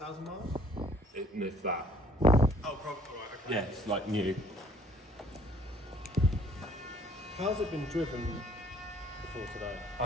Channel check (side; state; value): both; normal; correlation 0.60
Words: miles? If that. Oh, probably, right, okay. Yeah, it's like new. How's it been driven before today?